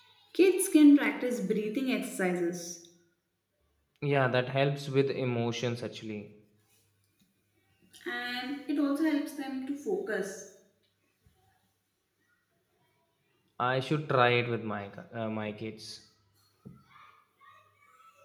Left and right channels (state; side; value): identical; both; correlation 1.00